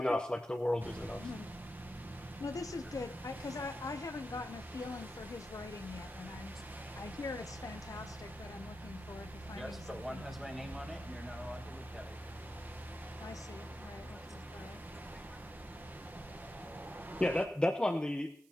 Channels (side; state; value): right; noise; hiss, 28 dB below the sound